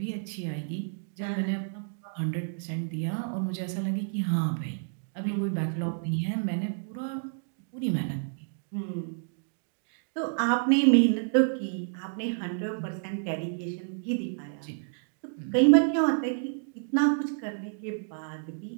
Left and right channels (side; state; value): left; silent; digital silence